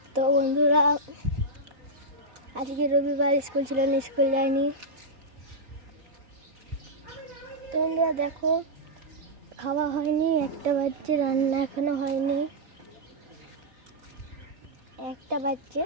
তো বন্ধুরা, আজকে রবিবার, স্কুল ছিল না, স্কুল যায়নি। তো বন্ধুরা দেখো, খাওয়া হয়নি, 1টা বাজছে, রান্না এখনো হয়নি। 1টা বাজছে,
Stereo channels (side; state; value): left; late; 4.6 ms